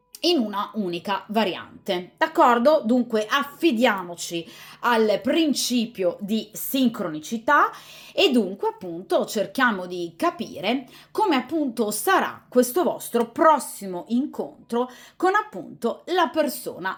in una unica variante. D'accordo? Dunque affidiamoci al principio di sincronicità e dunque appunto cerchiamo di capire come appunto sarà questo vostro prossimo incontro con appunto la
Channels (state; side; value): identical; both; correlation 1.00